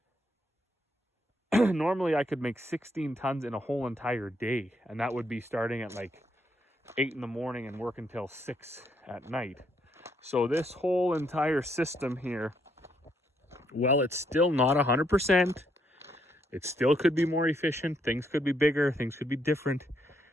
Normally I could make 16 tons in a whole entire day, and that would be starting at like 8 in the morning and work until 6 at night. So this whole entire system here, well, it's still not 100%. It still could be more efficient. Things could be bigger. Things could be different.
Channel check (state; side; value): normal; both; correlation 0.74